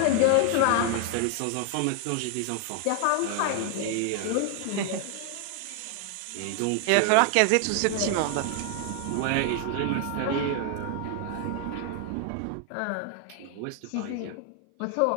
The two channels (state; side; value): different; both; correlation 0.00